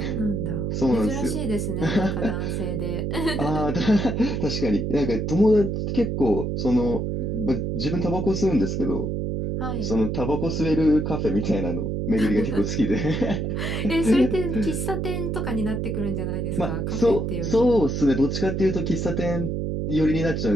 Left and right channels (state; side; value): noise; right; hum, 1 dB below the sound